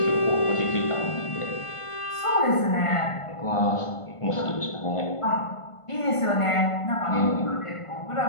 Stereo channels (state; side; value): late; right; 1.5 ms